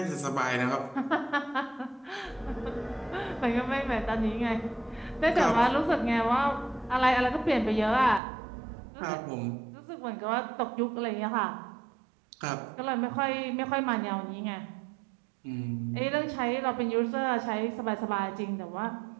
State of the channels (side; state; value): left; drops out; at 8.2 s